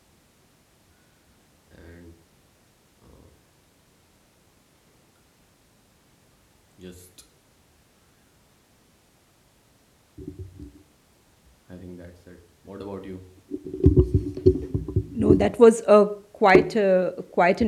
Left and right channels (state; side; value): identical; both; correlation 1.00